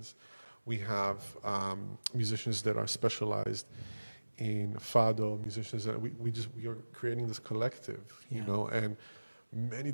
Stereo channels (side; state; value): both; inverted; correlation -1.00